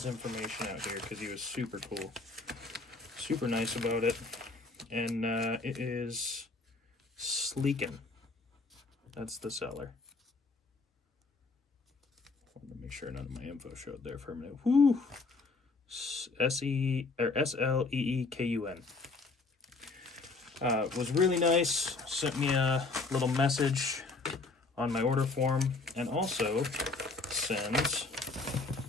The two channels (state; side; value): quieter; right; 3.8 dB